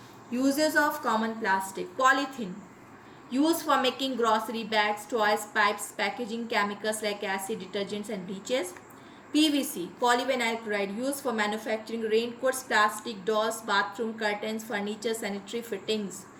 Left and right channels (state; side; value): identical; both; correlation 1.00